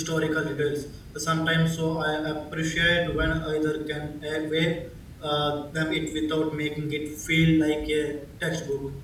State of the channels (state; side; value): identical; both; correlation 1.00